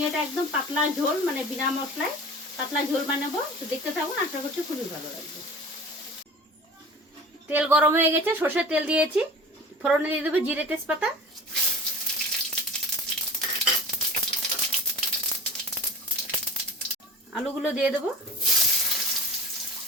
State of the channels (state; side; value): normal; both; correlation 0.39